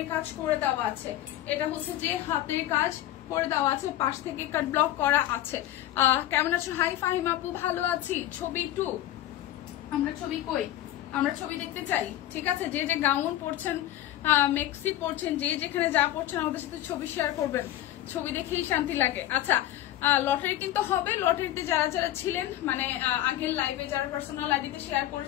কাজ করে দেওয়া আছে। এটা হচ্ছে যে হাতের কাজ করে দেওয়া আছে, পাশ থেকে কাট ব্লক করা আছে। কেমন আছো? হাই ফাহিম আপু, ভালো আছি। ছবি 2, আমরা ছবি কই? আমরা ছবি দেখতে চাই, ঠিক আছে। যে যে গাউন পরছেন, মেক্সি পরছেন, যে যেখানে যা পরছেন আমাদের সাথে ছবি শেয়ার করবেন, ছবি দেখেই শান্তি লাগে। আচ্ছা, লটারি কিন্তু হবে। লটারিতে যারা যারা ছিলেন, মানে আগের লাইভে যারা পার্সোনাল আইডিতে শেয়ার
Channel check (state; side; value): quieter; right; 13.5 dB